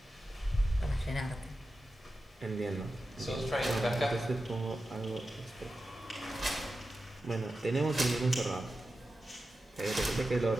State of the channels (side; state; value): both; normal; correlation 0.92